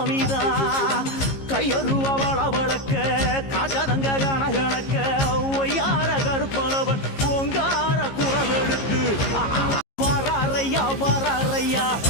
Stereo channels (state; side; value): late; right; 15 ms